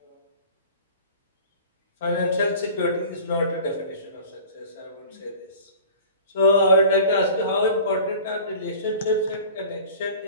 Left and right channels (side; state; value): both; inverted; correlation -0.42